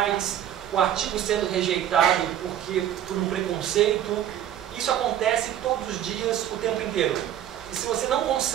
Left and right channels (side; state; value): left; quieter; 10.9 dB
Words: o artigo sendo rejeitado por um preconceito. Isso acontece todos os dias, o tempo inteiro. E se você não